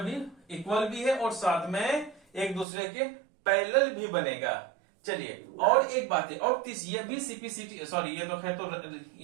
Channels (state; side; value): drops out; left; at 2.7 s